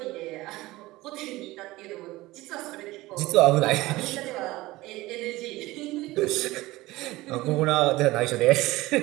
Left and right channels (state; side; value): quieter; left; 19.0 dB